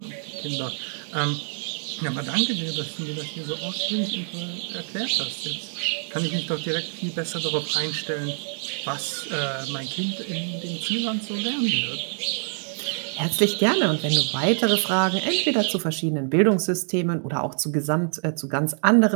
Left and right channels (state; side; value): silent; left; 56 dB below the other